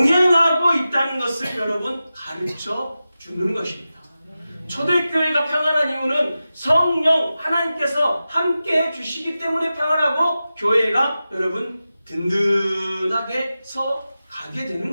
있다는 것을 여러분 가르쳐 주는 것입니다. 초대교회가 평안한 이유는 성령 하나님께서 함께 해주시기 때문에 평안하고 교회가 여러분 든든하게 서 가게 되는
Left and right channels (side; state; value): both; inverted; correlation -0.93